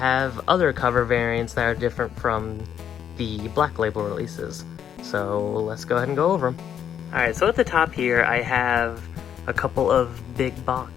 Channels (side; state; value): right; quieter; 9.0 dB